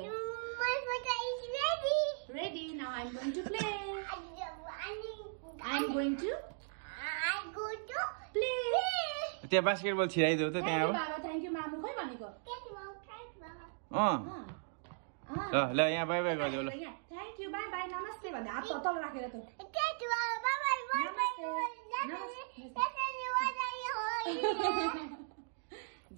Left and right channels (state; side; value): silent; left; digital silence